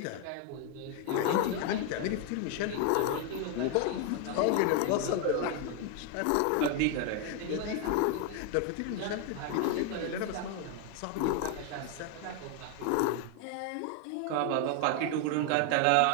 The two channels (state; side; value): different; both; correlation 0.01